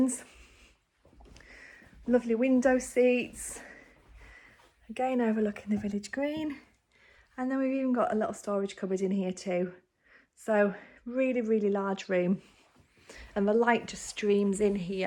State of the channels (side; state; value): both; identical; correlation 1.00